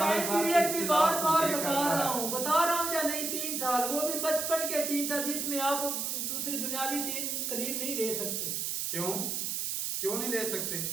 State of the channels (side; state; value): right; noise; hiss, 1 dB below the sound